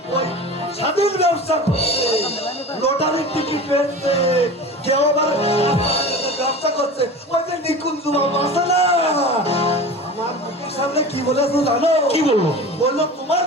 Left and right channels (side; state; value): both; normal; correlation 0.34